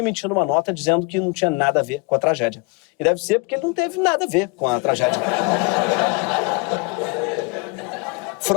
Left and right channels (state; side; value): quieter; right; 29.0 dB